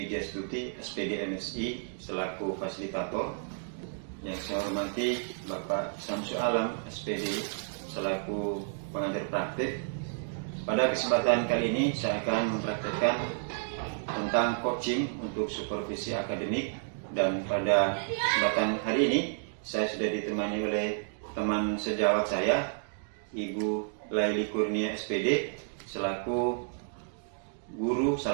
SPD MSI selaku fasilitator. Yang saya hormati Bapak Samsu Alam, SPD selaku pengajar praktik. Pada kesempatan kali ini saya akan mempraktekkan tentang coaching untuk supervisi akademik, dan pada kesempatan hari ini saya sudah ditemani oleh teman sejawat saya, Ibu Laili Kurnia SPD selaku guru,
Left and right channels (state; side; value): silent; left; digital silence